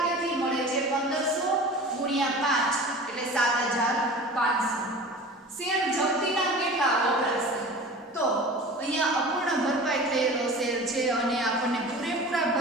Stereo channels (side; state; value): both; normal; correlation 0.38